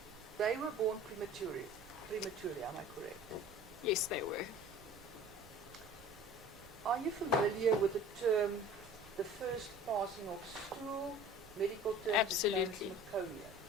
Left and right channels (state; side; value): noise; right; rumble, 21 dB below the sound